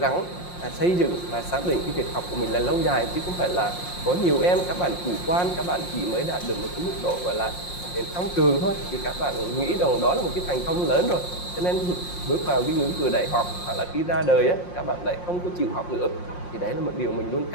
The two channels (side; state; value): right; late; 5.6 ms